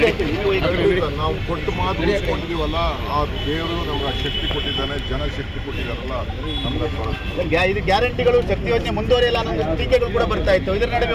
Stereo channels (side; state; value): both; identical; correlation 1.00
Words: ನಾವು ಕೊಟ್ಟು ಮಾತು ಉಳಿಸ್ಕೊಂಡಿದ್ದೀವಲ್ಲ, ಆ ದೇವರು ನಮ್ಗೆ ಶಕ್ತಿ ಕೊಟ್ಟಿದ್ದಾನೆ, ಜನ ಶಕ್ತಿ ಕೊಟ್ಟಿದ್ದಾರಲ್ಲ, ನಮ್ಗೆ ಇದು ಗ್ಯಾರಂಟಿಗಳು ಶಕ್ತಿ ಯೋಜನೆ ಮುಂದುವರಿಯಲ್ಲ ಅನ್ನೋ ಟೀಕೆಗಳು ಕೂಡ ಬರ್ತಾ ಇತ್ತು. ಇದರ ನಡುವೆ